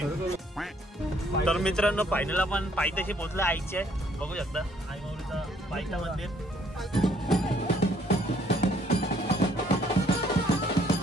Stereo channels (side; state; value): both; normal; correlation 0.64